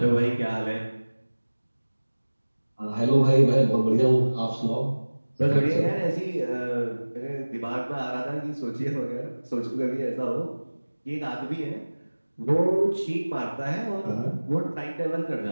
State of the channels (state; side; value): inverted; both; correlation -1.00